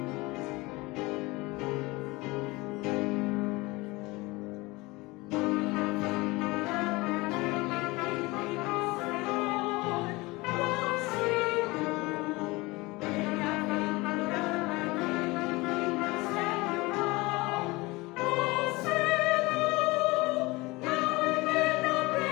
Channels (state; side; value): quieter; right; 22.8 dB